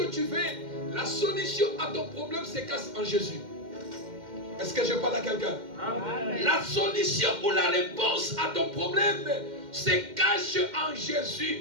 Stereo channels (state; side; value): late; left; 2.1 ms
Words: tu veux? La solution à ton problème se cache en Jésus. Est-ce que je parle à quelqu'un? Amen. La solution ou la réponse à ton problème se cache en